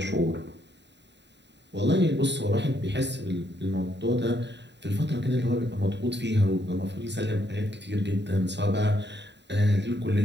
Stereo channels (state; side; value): late; left; 0.51 ms